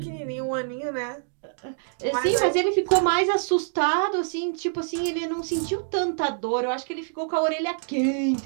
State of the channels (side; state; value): left; silent; digital silence